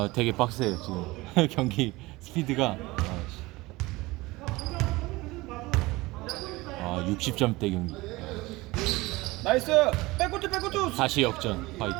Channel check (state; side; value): quieter; left; 21.1 dB